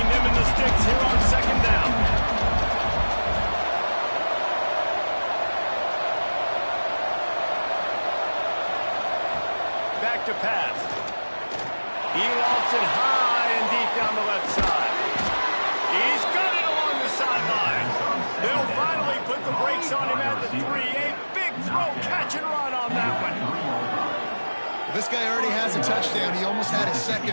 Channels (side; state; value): both; inverted; correlation -1.00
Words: them and the sticks here on 2nd down. Back to pass. He lofts it high and deep down the left side. He's got it along the sideline. They'll finally put the brakes on him at the 3. A big throw, catch and run on that one. This guy already has a touchdown. He almost had a